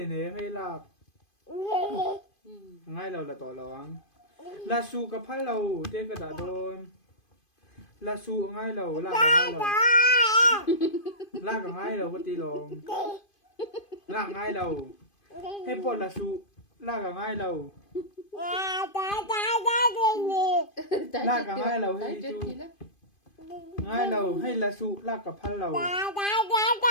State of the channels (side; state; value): right; late; 2.5 ms